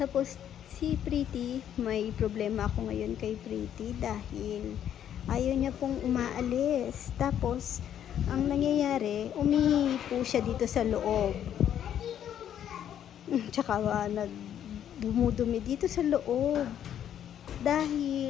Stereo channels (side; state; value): right; quieter; 10.0 dB